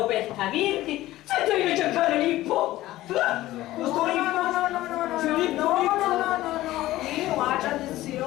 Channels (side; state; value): right; quieter; 16.1 dB